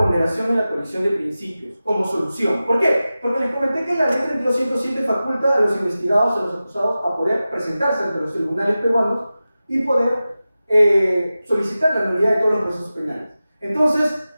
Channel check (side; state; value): both; inverted; correlation -0.95